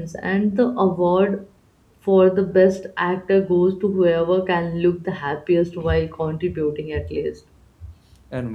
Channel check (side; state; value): both; identical; correlation 1.00